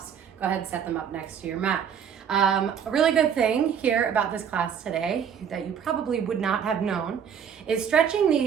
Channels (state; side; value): quieter; left; 7.9 dB